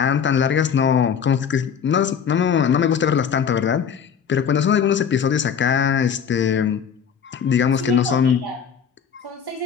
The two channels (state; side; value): quieter; right; 7.4 dB